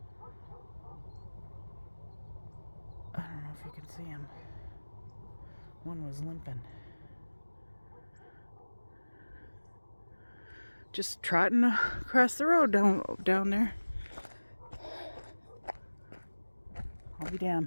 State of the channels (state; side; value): inverted; both; correlation -1.00